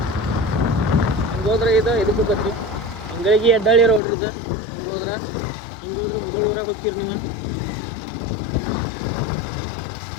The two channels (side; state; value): right; drops out; at 4.0 s